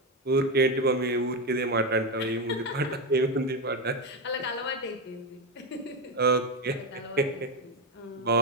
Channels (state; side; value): normal; both; correlation 0.12